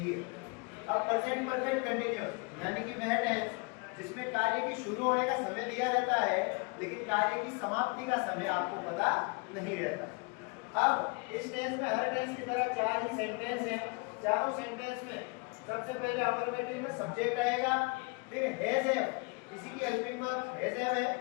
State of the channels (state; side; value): quieter; right; 30.4 dB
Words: है। अब प्रेजेंट परफेक्ट कंटीन्यूअस यानी कि वह टेंस जिसमें कार्य की शुरू होने का समय दिया रहता है, लेकिन कार्य की समाप्ति का समय आपको पता नहीं रहता। अब इस टेंस में हर टेंस की तरह चार ही सेंटेंस हैं। चारों सेंटेंस में सबसे पहले अफर्मेटिव में सब्जेक्ट आएगा, फिर हैज है, इसी की हेल्पिंग वर्ब हैज है,